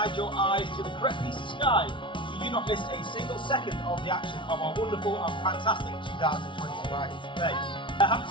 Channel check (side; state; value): right; late; 0.24 ms